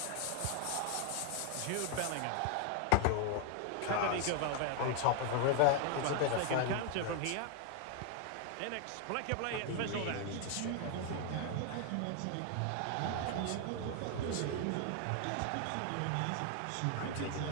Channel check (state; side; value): different; both; correlation 0.00